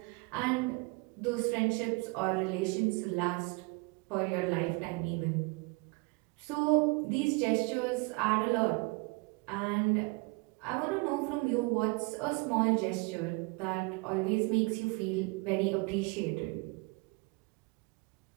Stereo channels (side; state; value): left; quieter; 28.8 dB